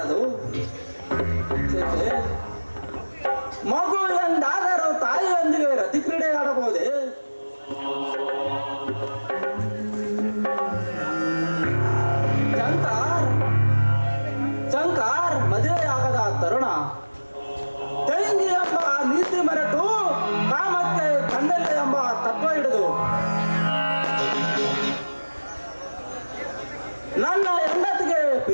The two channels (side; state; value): both; inverted; correlation -1.00